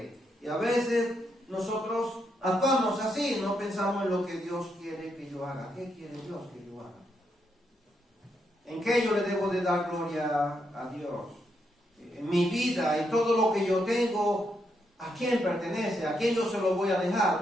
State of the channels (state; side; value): normal; both; correlation 0.80